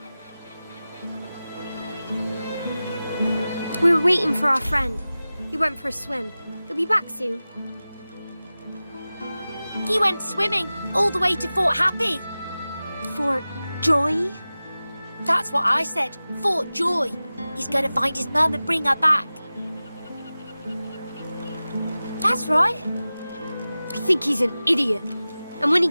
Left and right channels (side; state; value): both; inverted; correlation -0.96